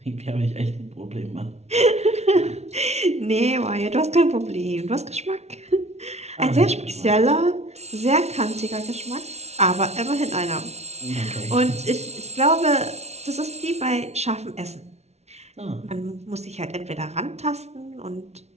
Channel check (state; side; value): late; left; 0.31 ms